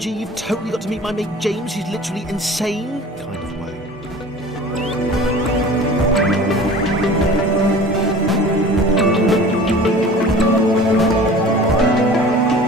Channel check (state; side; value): normal; both; correlation 0.42